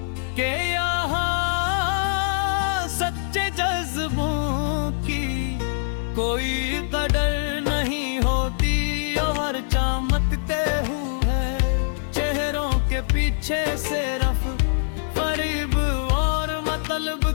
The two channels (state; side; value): silent; right; 55 dB below the other